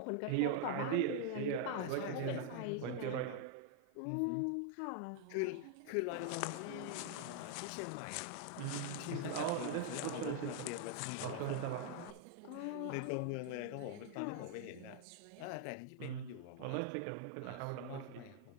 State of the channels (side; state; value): both; different; correlation 0.00